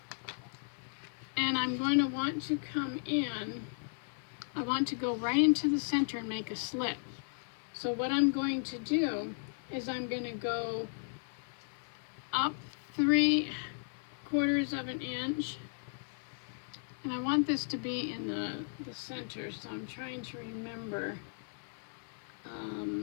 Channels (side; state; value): right; silent; digital silence